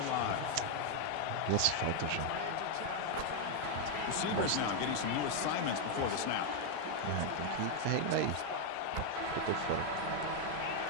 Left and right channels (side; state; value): both; different; correlation 0.00